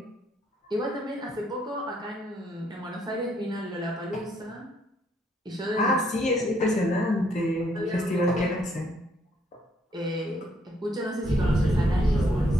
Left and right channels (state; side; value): normal; both; correlation 0.70